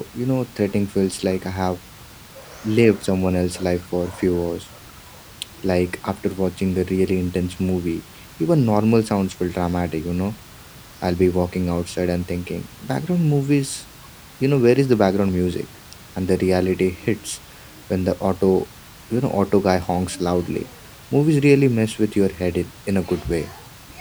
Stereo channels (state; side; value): identical; both; correlation 1.00